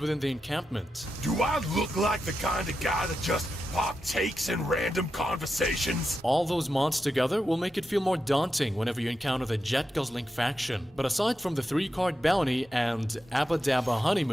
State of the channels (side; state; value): both; normal; correlation 0.88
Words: the encampment. Do I look like the kind of guy that just partakes in random conversations? All those mods together will make it feel more daunting whenever you encounter the Jet Guzzling faction. But aside from the 3-card bounty and Abba Dabba